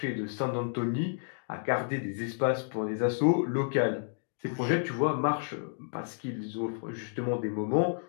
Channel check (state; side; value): silent; right; digital silence